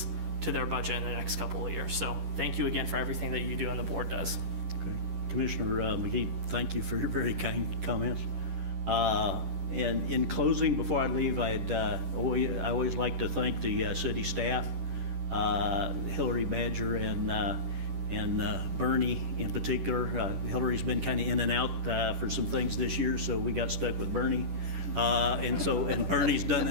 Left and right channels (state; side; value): late; left; 10 ms